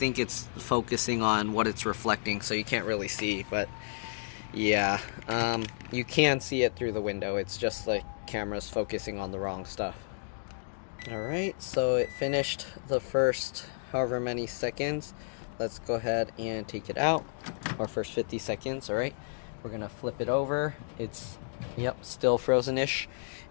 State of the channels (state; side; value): silent; right; digital silence